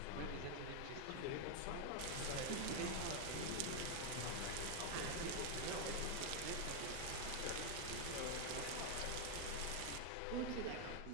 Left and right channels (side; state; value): both; different; correlation 0.00